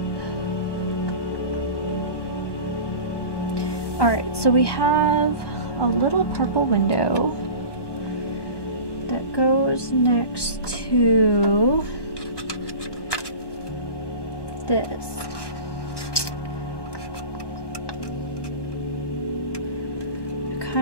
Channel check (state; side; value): late; right; 1.2 ms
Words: Alright, so we have a little purple window that goes next to this. I